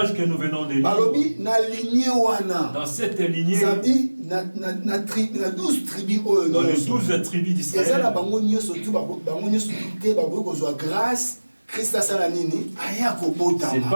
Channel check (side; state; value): both; inverted; correlation -1.00